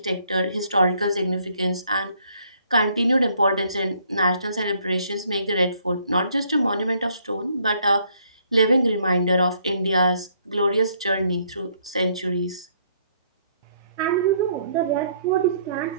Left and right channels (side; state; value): both; inverted; correlation -0.67